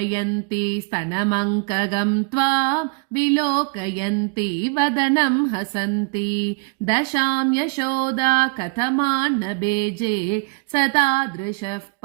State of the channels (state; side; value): quieter; left; 32.8 dB